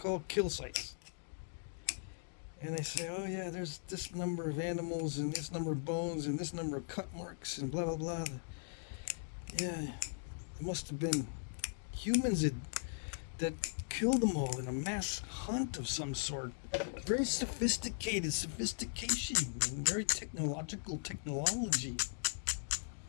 kill sites. And they say, oh yeah, there's this number of animals, and this number of bones, and this number of cut marks, and blah blah blah. Yeah, it must have been humans that kill them all in a mass hunt of some sort. Very sophisticated sophistication and very technology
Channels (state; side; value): silent; right; digital silence